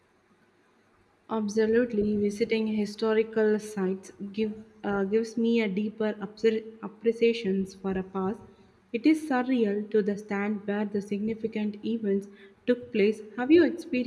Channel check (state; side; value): identical; both; correlation 1.00